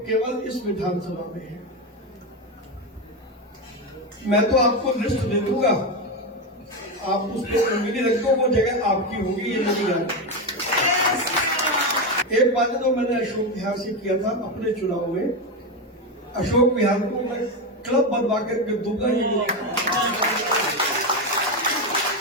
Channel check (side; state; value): both; normal; correlation 0.12